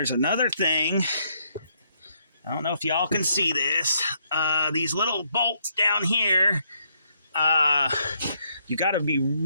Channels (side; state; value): both; inverted; correlation -0.73